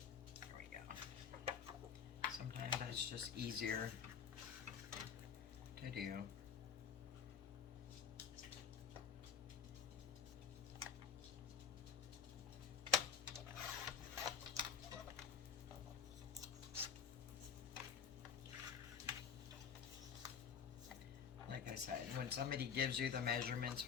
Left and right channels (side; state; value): right; quieter; 7.3 dB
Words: It's just easier to do. Like I said, when somebody gives you the measurements